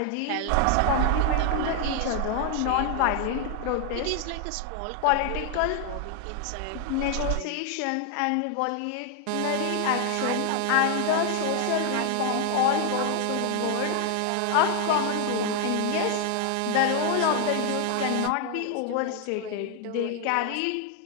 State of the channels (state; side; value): different; both; correlation 0.00